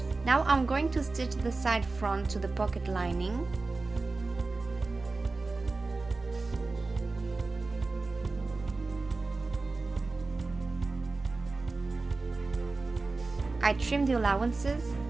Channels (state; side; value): quieter; left; 3.6 dB